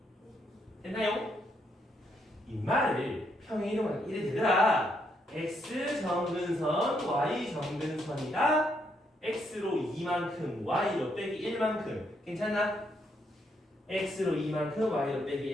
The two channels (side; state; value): both; normal; correlation 0.75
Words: 됐나요? 이 말을 평행이동하면 이래 되더라. x 정근선 y 정근선이다. x로 2만큼 y로 빼기 1만큼 괜찮나? x로 2만큼 y로